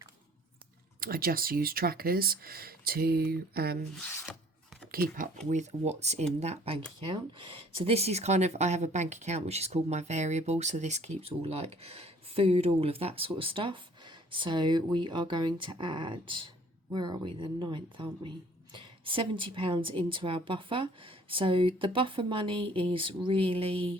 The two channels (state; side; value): normal; both; correlation 0.56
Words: I just use trackers to keep up with what's in that bank account. So this is kind of, I have a bank account which is called my variable, so this keeps all like food, all of that sort of stuff. So we are going to add, where are we, the 9th, aren't we, £70 into our buffer. So the buffer money is